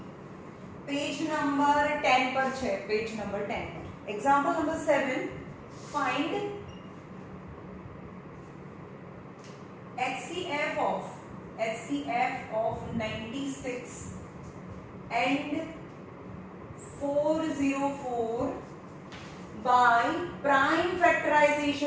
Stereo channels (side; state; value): both; identical; correlation 1.00